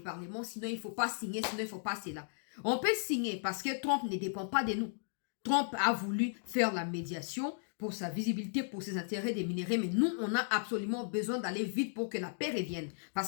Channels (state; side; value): silent; right; digital silence